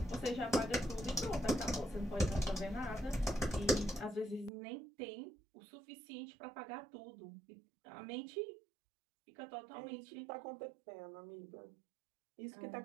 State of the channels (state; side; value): drops out; left; at 4.5 s